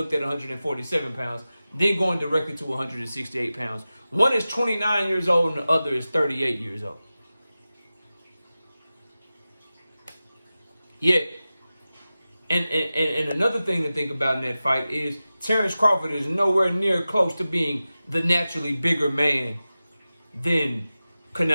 at 147 pounds, then going directly to 168 pounds. One is 29 years old and the other is 38 years old. Yeah. And another thing to think about in that fight is Terrence Crawford is nowhere near close to being the naturally bigger man than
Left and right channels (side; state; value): both; inverted; correlation -0.95